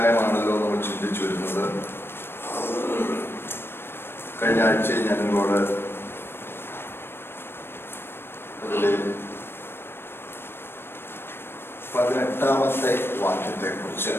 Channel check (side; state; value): right; late; 0.11 ms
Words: നമ്മൾ ചിന്തിച്ചു വരുന്നത്. കഴിഞ്ഞ ആഴ്ച ഞാൻ നിങ്ങളോട് അതിലെ 18-ാമത്തെ വാക്യത്തെ കുറിച്ച്